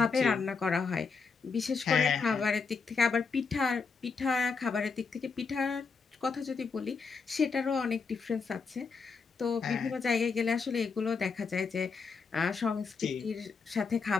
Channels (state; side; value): quieter; right; 5.0 dB